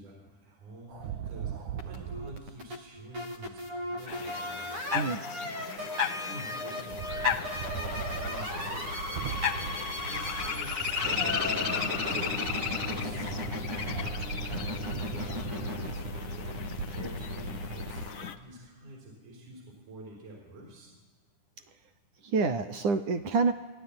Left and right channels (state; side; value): late; left; 9.9 ms